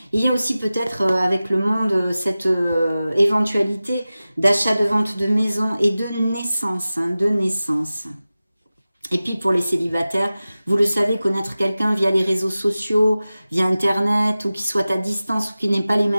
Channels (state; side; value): inverted; both; correlation -0.96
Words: Il y a aussi peut-être avec le monde cette éventualité d'achat, de vente de maison et de naissance, hein, de naissance. Et puis pour les célibataires, vous le savez, connaître quelqu'un via les réseaux sociaux, via Internet, ou qui soit à distance, ou qui n'ait pas les